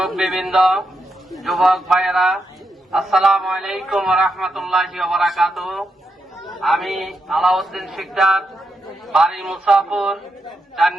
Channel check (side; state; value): both; normal; correlation 0.84